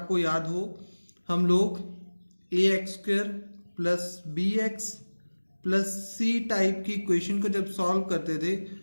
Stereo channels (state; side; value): inverted; both; correlation -1.00